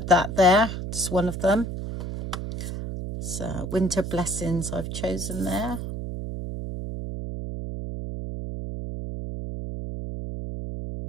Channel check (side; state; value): right; noise; hum, 6 dB below the sound